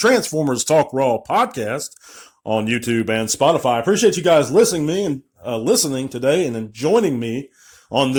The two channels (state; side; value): identical; both; correlation 1.00